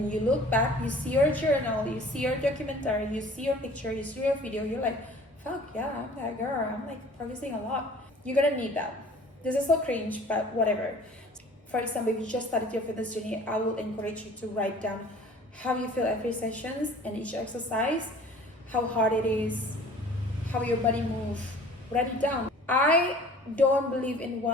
you look back, you see your journal, you see your documentary, you see your picture, you see your video, you're like, fuck yeah, I'm that girl. I'm like progressing a lot. You're gonna need that. This is so cringe, but whatever. For example, if you just started your fitness journey, I will encourage you to write down how you feel every sessions and each exercise, how hard it is, how your body moves. Write it down. I don't believe in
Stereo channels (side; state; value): both; normal; correlation 0.48